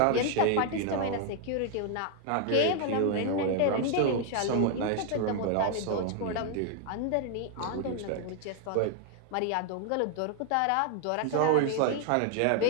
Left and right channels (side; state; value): both; different; correlation 0.00